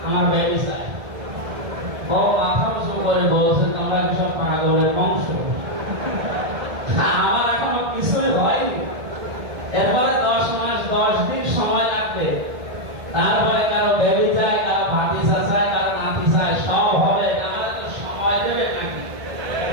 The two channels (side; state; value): left; late; 1.7 ms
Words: আমার বেবি চাই। বউ মাথা উঁচু করে বলছে তোমরা কি সব পাগলের বংশ? আমার এখনো কিছুই হয়নি। এরপরে 10 মাস 10 দিন সময় লাগবে, তারপরে কারো বেবি চাই, কারো ভাতিজা চাই, কারো নাতি চাই, সব হবে। আমরা তো সময় দেবে নাকি?